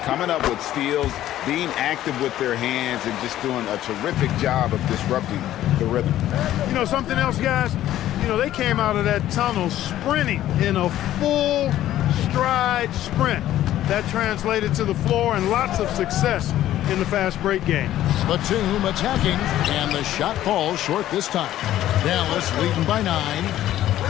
coming up with steals, being active with their hands, and just doing a terrific job of disrupting the rhythm. You know, something else, guys? You know, they came out of that tunnel sprinting in a full stride sprint. That translated to the floor and lots of success in the fast break game. Batum attacking, and the shot falls short this time. Dallas leading by 9.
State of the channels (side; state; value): right; quieter; 13.1 dB